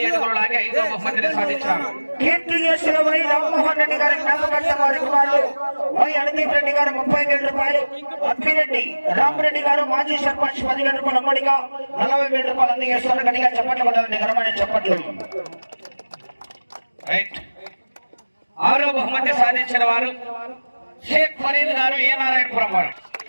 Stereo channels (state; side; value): inverted; both; correlation -1.00